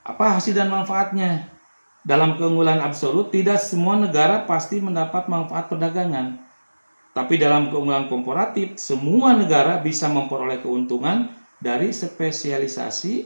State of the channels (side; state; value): both; inverted; correlation -1.00